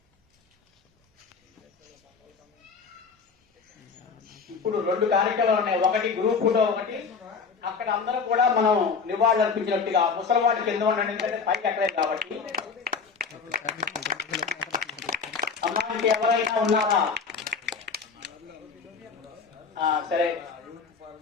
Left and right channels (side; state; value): right; quieter; 5.4 dB